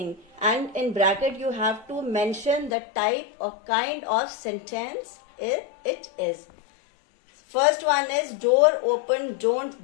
And in bracket you have to mention the type of kind of sentence it is. First one is, door open,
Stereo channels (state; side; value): drops out; right; at 2.7 s